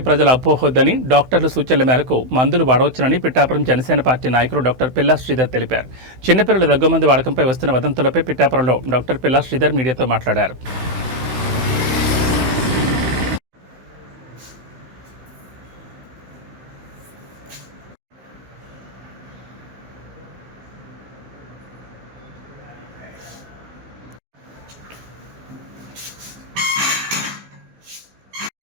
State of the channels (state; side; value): late; left; 16 ms